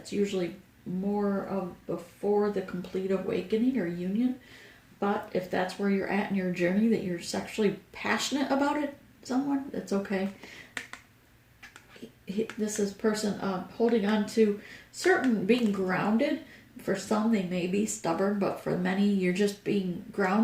usually more of before the complete awakening or union. But if that's where you're at in your journey, that you're sexually passionate about it, someone, that's okay. This is person holding on to certain, being grounded. For some, they may be stubborn, but for many, you're just being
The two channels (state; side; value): identical; both; correlation 1.00